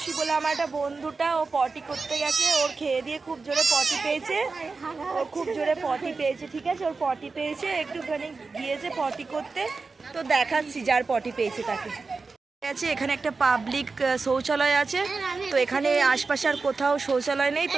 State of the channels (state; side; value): quieter; left; 4.2 dB